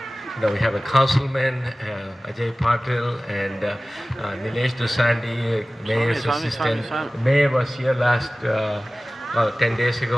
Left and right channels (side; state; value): both; normal; correlation 0.97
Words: we have a councilman, Ajay Patil, and Nilesh Dosandi, mayor's assistant. The mayor was here last 10 days